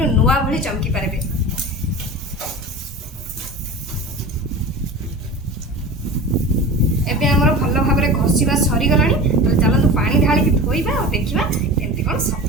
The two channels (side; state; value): both; normal; correlation 0.33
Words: नुआ भली चमकी पारबे। एबे हमर भलो भाबरे घसीबा सरी गलानी। तो चलंतु पानी ढाली के धोइबा और देखिबा केमती कोन